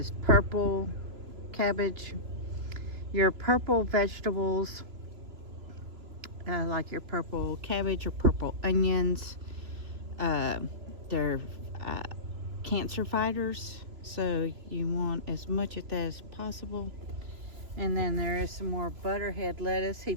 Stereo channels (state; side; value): late; left; 3.0 ms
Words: purple cabbage. Your purple vegetables, like your purple cabbage or purple onions, they're cancer fighters, so you want as much of that as possible. And then there is some more butterhead lettuce he